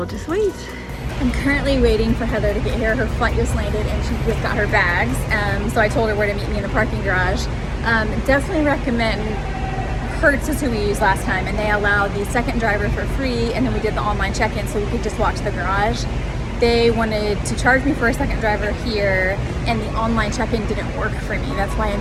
just wait. I'm currently waiting for Heather to get here. Her flight just landed and she just got her bags. So I told her where to meet me in the parking garage. Definitely recommend Hertz is who we used last time, and they allowed the second driver for free, and then we did the online check-in so we could just walk to the garage. They wanted to charge me for a second driver here, and the online check-in didn't work for me. That's why I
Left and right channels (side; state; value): both; identical; correlation 1.00